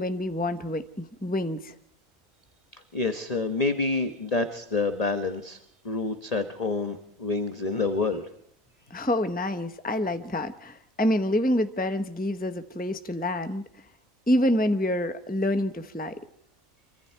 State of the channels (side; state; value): both; normal; correlation 0.48